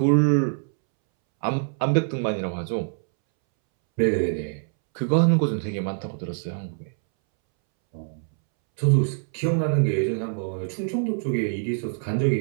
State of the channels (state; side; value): silent; left; 62 dB below the other